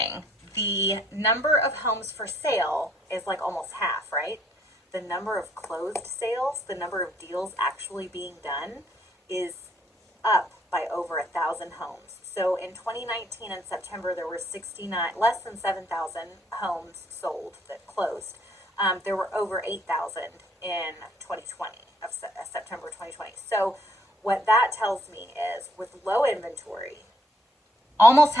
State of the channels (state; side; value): normal; both; correlation 0.67